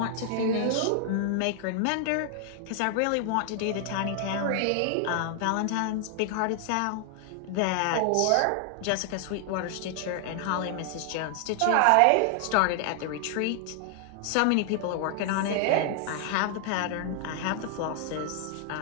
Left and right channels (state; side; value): different; both; correlation 0.00